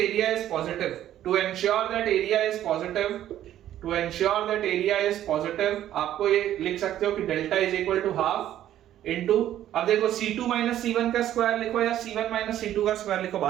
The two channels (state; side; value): quieter; left; 12.0 dB